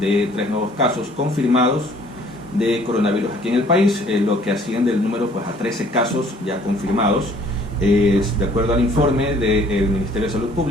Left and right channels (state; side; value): normal; both; correlation 0.57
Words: 3 nuevos casos confirmados de coronavirus aquí en el país, lo que asciende el número pues, a 13 casos ya confirmados. De acuerdo al informe del Ministerio de Salud